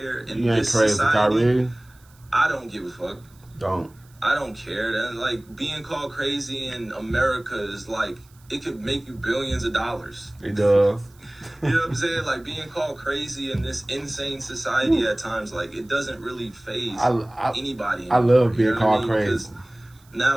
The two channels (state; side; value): noise; right; hiss, 30 dB below the sound